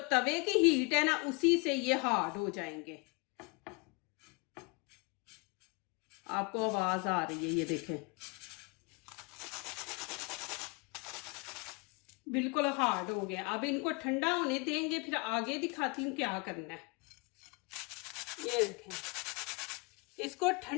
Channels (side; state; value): right; quieter; 29.6 dB